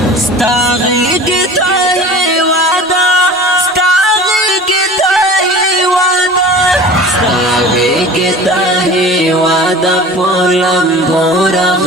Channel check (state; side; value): normal; both; correlation 0.40